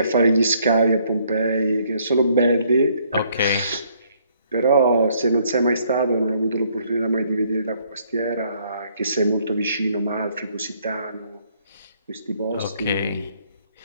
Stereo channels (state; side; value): inverted; both; correlation -0.66